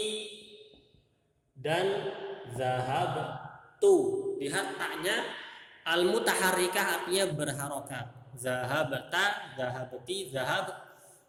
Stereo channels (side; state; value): both; identical; correlation 1.00